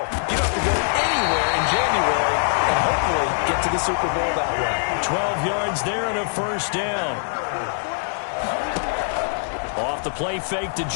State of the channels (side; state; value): right; silent; 64 dB below the other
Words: don't have to go anywhere in January and hopefully get to the Super Bowl that way. 12 yards there and a 1st down. Off the play fake to